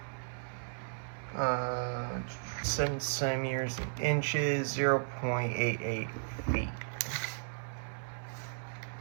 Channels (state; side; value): silent; left; 54 dB below the other